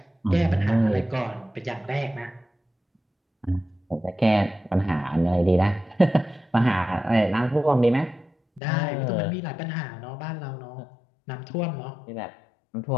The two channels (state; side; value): drops out; right; at 8.6 s